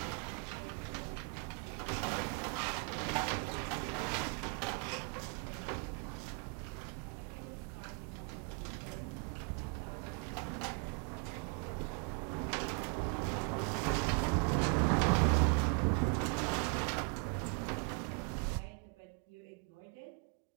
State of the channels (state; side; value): quieter; left; 37.3 dB